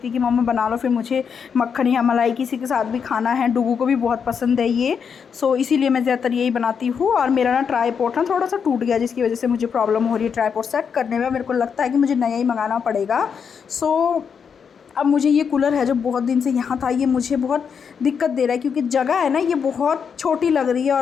है कि मम्मा बना लो, फिर मुझे मक्खन या मलाई किसी के साथ भी खाना है, डुग्गू को भी बहुत पसंद है ये। सो इसीलिए मैं ज़्यादातर यही बनाती हूँ। और मेरा ना ट्राईपॉड ना थोड़ा सा टूट गया, जिसकी वजह से मुझे प्रॉब्लम हो रही है ट्राईपॉड सेट करने में। मेरे को लगता है कि मुझे नया ही मंगाना पड़ेगा। सो अब मुझे ये कूलर है जो बहुत दिन से यहाँ था, ये मुझे बहुत दिक्कत दे रहा है, क्योंकि जगह है ना ये बहुत छोटी लग रही है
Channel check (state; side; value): quieter; right; 6.7 dB